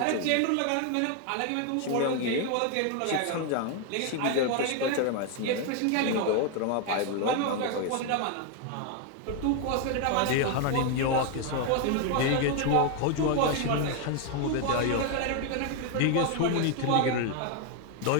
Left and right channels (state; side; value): different; both; correlation 0.01